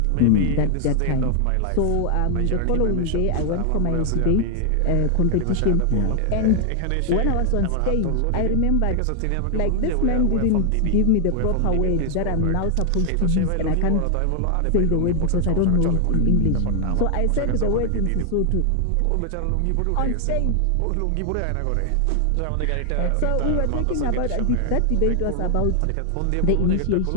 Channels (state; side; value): different; both; correlation 0.00